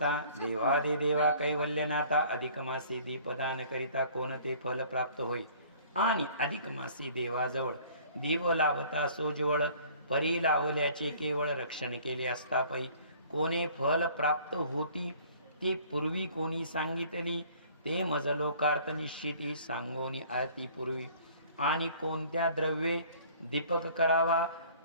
देवादिदेवा कैवल्यनाथा, अधिक मासी दीपदान करिता कोणते फल प्राप्त होई, आणि अधिक मासी देवाजवळ दीप लावता सोजवळ, परी लावल्याचे केवळ रक्षण केले असता पै, कोणे फल प्राप्त होती ते पूर्वी कोणी सांगितली, ते मज लोकार्थ निश्चिती सांगोनी आरती पूर्वी। आणि कोणत्या द्रव्ये दीपक करावा,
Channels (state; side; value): inverted; both; correlation -0.52